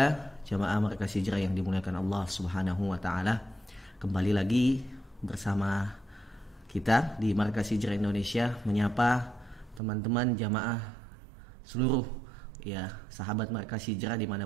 jamaah Markas Hijrah yang dimuliakan Allah Subhanahu wa taala. Kembali lagi bersama kita di Markas Hijrah Indonesia menyapa teman-teman jamaah seluruh sahabat Markas Hijrah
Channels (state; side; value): drops out; left; at 9.8 s